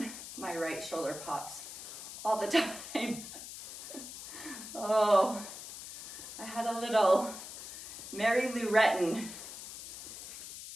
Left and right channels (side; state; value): left; noise; hiss, 11 dB below the sound